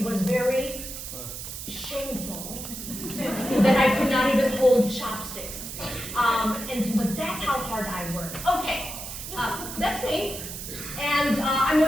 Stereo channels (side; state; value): right; noise; hiss, 9 dB below the sound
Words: was very shameful that I could not even hold chopsticks. But that's how hard I work. Okay, that's me. And I